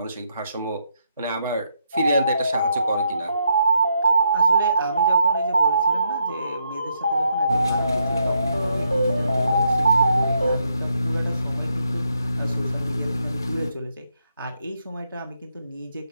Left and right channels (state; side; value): inverted; both; correlation -0.78